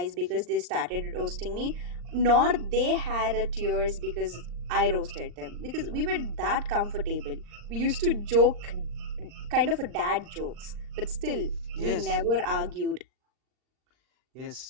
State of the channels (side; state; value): left; late; 39 ms